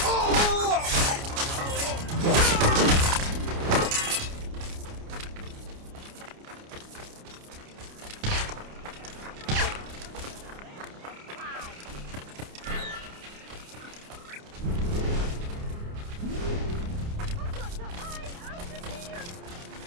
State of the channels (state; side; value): late; left; 29 ms